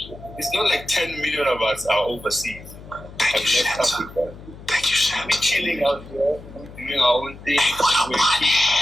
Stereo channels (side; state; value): left; noise; hum, 17 dB below the sound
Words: It's not like 10 million of us are overseas. Thank you, Santa. Thank you, Santa. We're chilling out here. We're doing our own thing. Hey, what up,